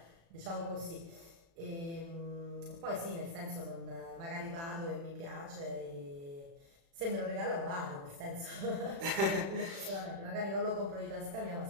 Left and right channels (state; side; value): late; left; 36 ms